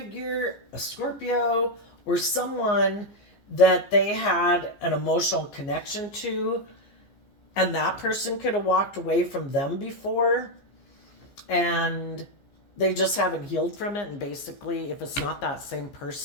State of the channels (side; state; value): right; late; 15 ms